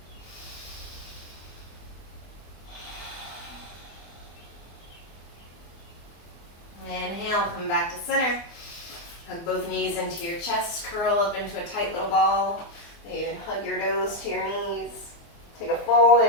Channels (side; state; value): right; late; 24 ms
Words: Inhale, come back to center. Hug both knees into your chest, curl up into a tight little ball. And hug your nose to your knees. Take a full